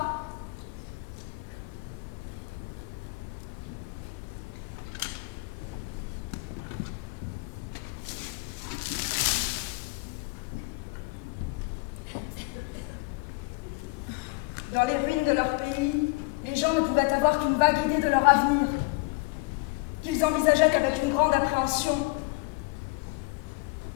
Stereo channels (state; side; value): quieter; right; 27.3 dB